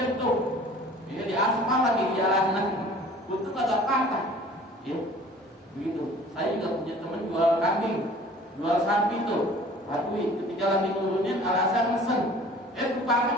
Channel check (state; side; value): normal; both; correlation 0.48